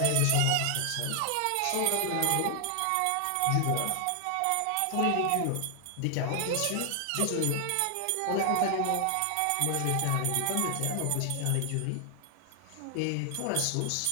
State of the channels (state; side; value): different; both; correlation 0.00